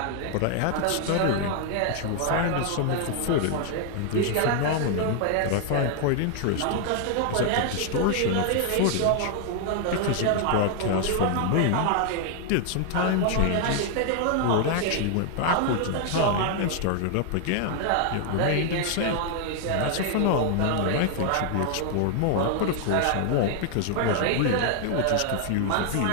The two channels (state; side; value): different; both; correlation 0.00